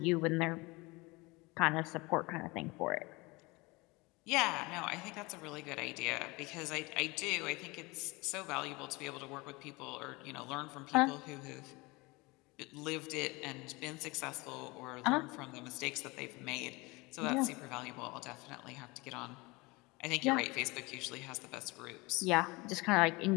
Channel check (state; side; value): quieter; right; 24.3 dB